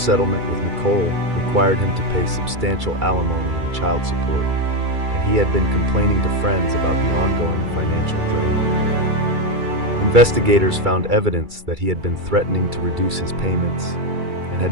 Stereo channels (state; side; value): late; left; 2.3 ms